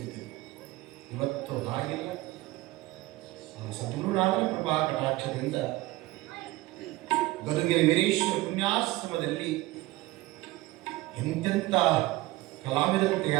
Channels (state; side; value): quieter; left; 19.0 dB